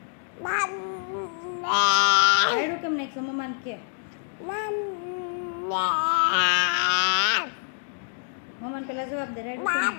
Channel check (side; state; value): right; silent; digital silence